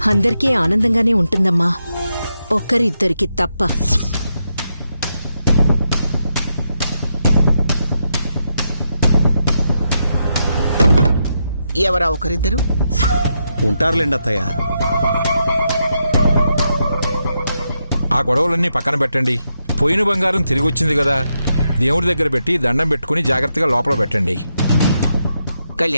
అందరికీ ఆనందంగానే ఉంటుందమ్మా, ఒక్కరిద్దరికి తప్ప. ఎవరా ఒకరిద్దరు? ఉంటారులేండి అత్తయ్య. ఆ గొడవలన్నీ పక్కన పెట్టండి. పోయిన బంగారం తిరిగి వచ్చింది కదా, దేవుడి దగ్గర పెట్టి దండం పెట్టుకుని జాగ్రత్తగా లోపల పెట్టండి.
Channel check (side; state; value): both; inverted; correlation -0.83